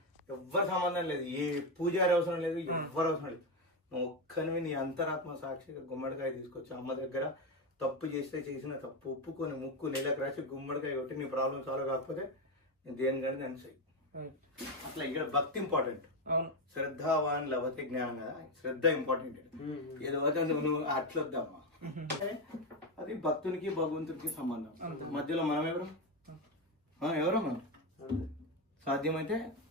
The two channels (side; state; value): both; normal; correlation 0.11